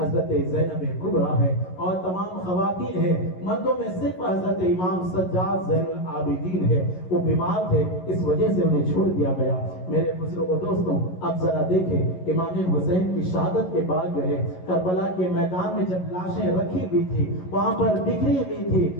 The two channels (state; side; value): late; right; 11 ms